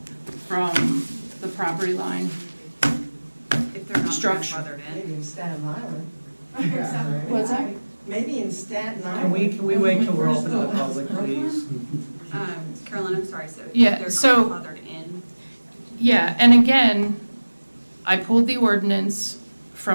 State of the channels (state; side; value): inverted; both; correlation -1.00